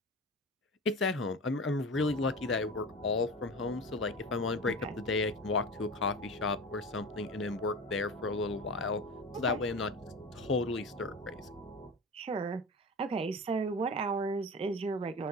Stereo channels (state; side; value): normal; both; correlation 0.31